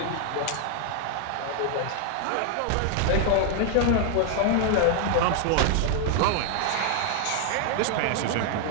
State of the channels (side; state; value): both; different; correlation 0.00